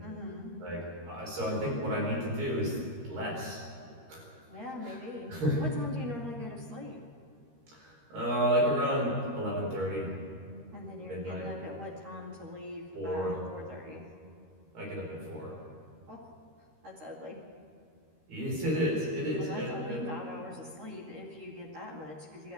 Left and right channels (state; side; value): late; left; 13 ms